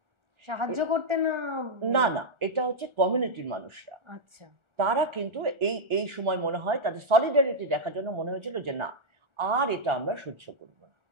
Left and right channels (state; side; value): late; left; 1.4 ms